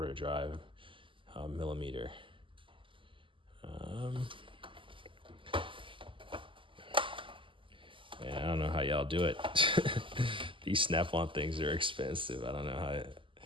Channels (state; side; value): late; left; 0.25 ms